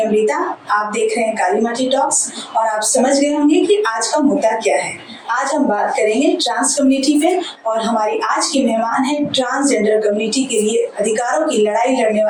आप देख रहे हैं काली माटी टॉक्स और आप समझ गए होंगे कि आज का मुद्दा क्या है। आज हम बात करेंगे ट्रांस कम्युनिटी पे और हमारी आज की मेहमान है ट्रांसजेंडर कम्युनिटी के लिए अधिकारों की लड़ाई लड़ने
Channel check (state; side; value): identical; both; correlation 1.00